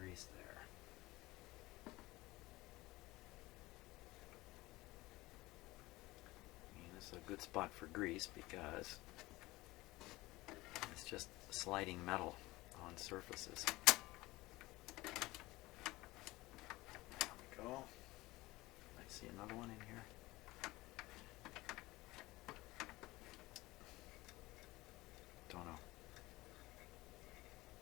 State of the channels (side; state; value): right; quieter; 19.9 dB